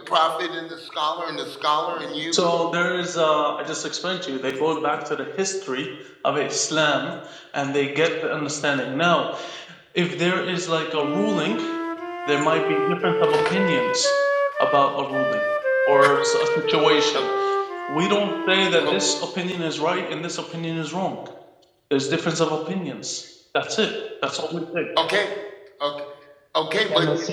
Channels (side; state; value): both; identical; correlation 1.00